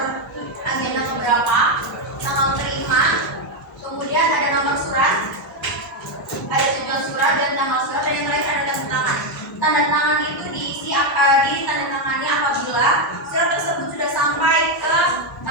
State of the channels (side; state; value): both; normal; correlation 0.05